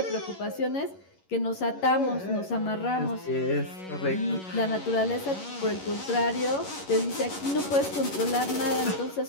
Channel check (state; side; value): late; right; 11 ms